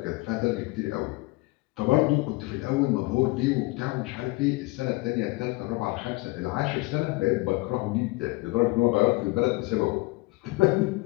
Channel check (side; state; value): right; quieter; 23.1 dB